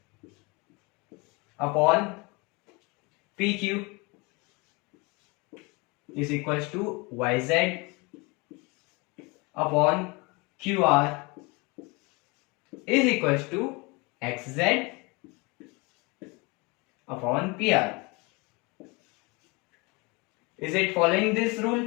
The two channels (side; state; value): right; quieter; 26.8 dB